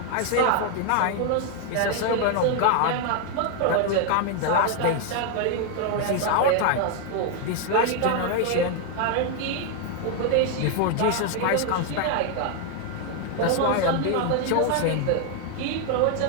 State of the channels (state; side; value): different; both; correlation 0.01